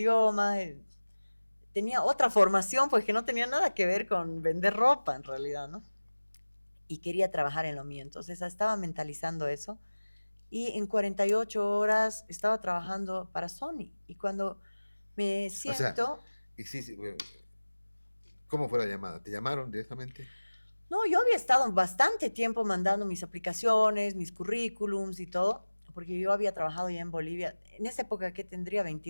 tenía otra formación, pues que no tenía nada que ver con vender ropa en realidad, ¿no? Y quería trabajar en lo mío, entonces estaba mentalizando eso, y en 48 horas estaba trabajando para Sony, y cuando Me O sea, siento. y sí, sí, bueno, ¿cómo fue la llamada? ¿Te llamaron directamente? No, yo había estado bastante tiempo mandando mis aplicaciones, mis currículums y todo, porque yo había trabajado ya en Bolivia, en esa época que tendría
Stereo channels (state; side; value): inverted; both; correlation -1.00